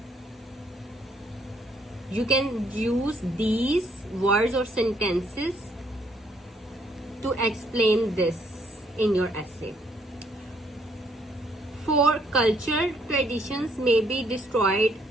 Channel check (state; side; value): normal; both; correlation 0.68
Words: You can use these words or sentences to explain this in your essay. For cultural traditions may be destroyed,